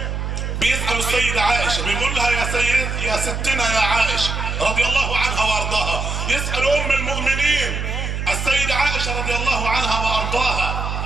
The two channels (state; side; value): noise; right; hum, 3 dB below the sound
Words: بيسأل السيدة عائشة بيقول لها يا ستنا يا عائشة رضي الله عنها وارضاها، يسأل ام المؤمنين السيدة عائشة رضي الله عنها وارضاها.